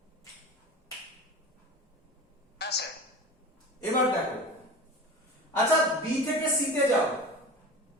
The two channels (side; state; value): both; normal; correlation 0.34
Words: হ্যাঁ স্যার। এবার দেখো, আচ্ছা বি থেকে সি তে যাও,